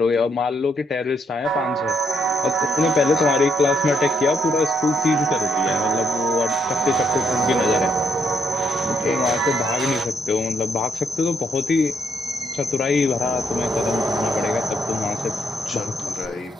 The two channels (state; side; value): normal; both; correlation 0.75